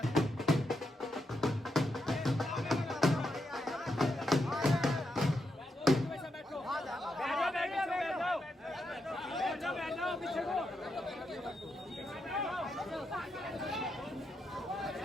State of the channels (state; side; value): normal; both; correlation 0.83